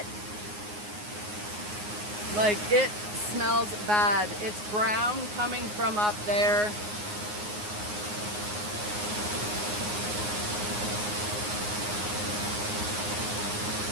Like, it smells bad. It's brown coming from up there.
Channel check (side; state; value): left; late; 9.6 ms